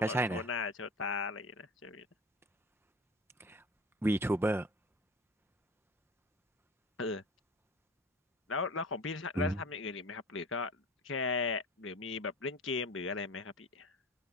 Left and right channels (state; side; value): normal; both; correlation 0.39